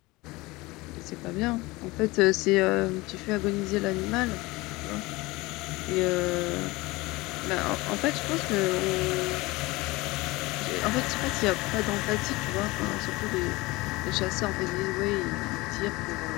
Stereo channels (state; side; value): quieter; right; 21.9 dB